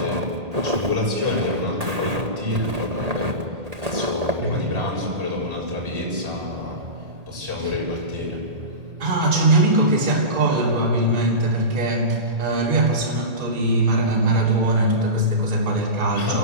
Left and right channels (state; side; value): late; left; 1.7 ms